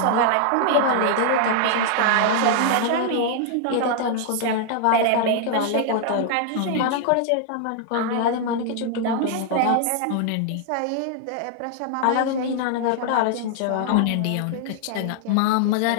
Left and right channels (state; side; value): different; both; correlation -0.01